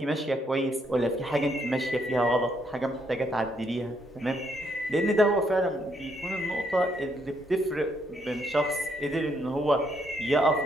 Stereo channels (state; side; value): normal; both; correlation 0.73